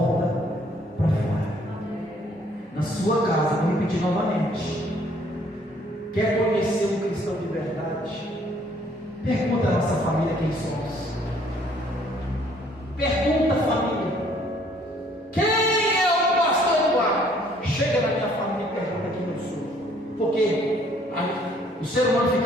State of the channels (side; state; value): both; normal; correlation 0.62